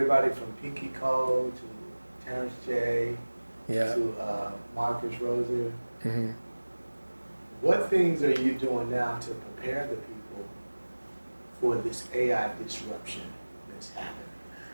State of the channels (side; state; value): both; inverted; correlation -1.00